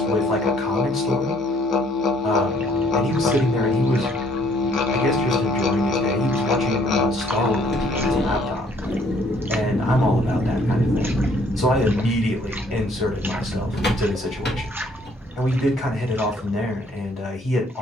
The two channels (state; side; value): normal; both; correlation 0.62